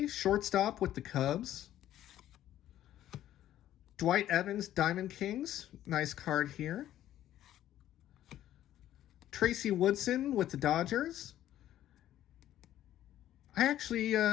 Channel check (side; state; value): right; quieter; 12.5 dB